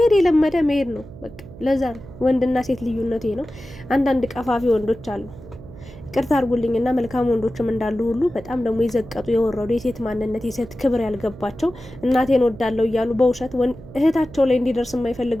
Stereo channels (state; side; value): noise; right; hum, 17 dB below the sound